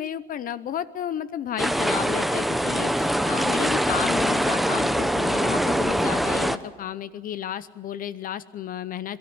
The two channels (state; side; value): normal; both; correlation 0.79